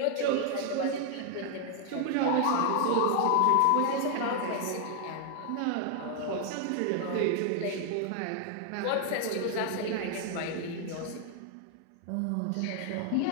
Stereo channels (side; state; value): both; different; correlation 0.00